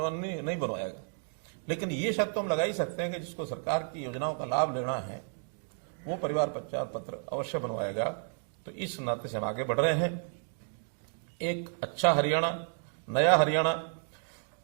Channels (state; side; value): silent; left; 56 dB below the other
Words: नहीं बनवाएगा। लेकिन ये शर्त तो हम लगा ही सकते हैं कि जिसको सरकार की योजनाओं का लाभ लेना है वो परिवार पहचान पत्र अवश्य बनवाएगा। तो इस नाते से हम आगे बढ़ रहे हैं। एक अच्छा हरियाणा, नया हरियाणा,